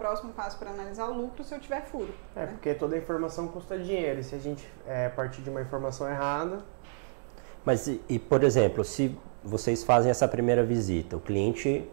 passo para analisar o lucro se eu tiver furo. Né? Porque toda informação custa dinheiro, e se a gente partir de uma informação errada... Mas, por exemplo, se vocês fazem essa primeira visita, o cliente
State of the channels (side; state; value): left; silent; digital silence